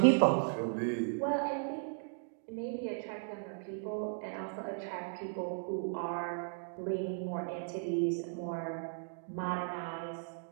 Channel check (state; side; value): silent; left; digital silence